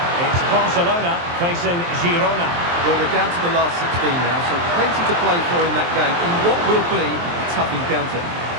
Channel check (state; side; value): late; left; 23 ms